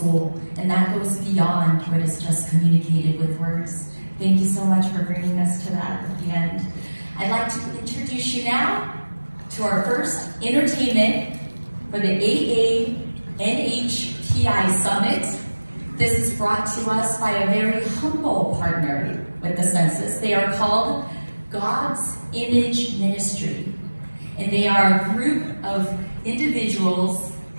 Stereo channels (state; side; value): inverted; both; correlation -1.00